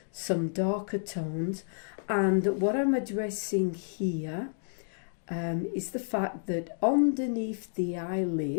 some darker tones. And what I'm addressing here is the fact that underneath the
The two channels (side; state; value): right; silent; digital silence